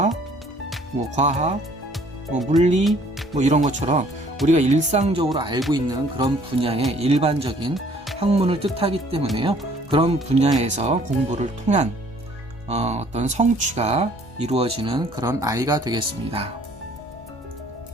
과학, 물리, 이런 것처럼 우리가 일상적으로 알고 있는 그런 분야의 일반적인 학문을 뜻하기 때문에요. 그런 분야에서 공부를 통한 어떤 성취가 이루어지는 그런 아이가 되겠습니다.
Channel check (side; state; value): both; normal; correlation 0.58